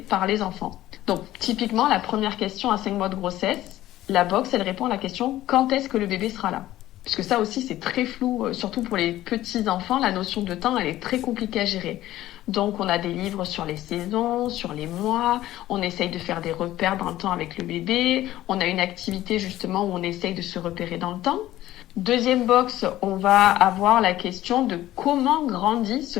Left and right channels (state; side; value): quieter; right; 14.6 dB